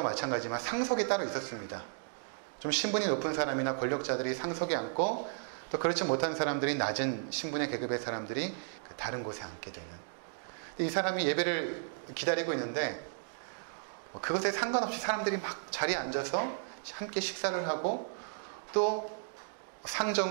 마찬가지지만 상석이 따로 있었습니다. 좀 신분이 높은 사람이나 권력자들이 상석에 앉고 또 그렇지 못한 사람들이 낮은 신분의 계급의 사람들이 다른 곳에 앉게 되는. 이 사람이 예배를 기다리고 있는데 그것에 상관없이 사람들이 막 자리에 앉아서 함께 식사를 하고 또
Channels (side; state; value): left; silent; digital silence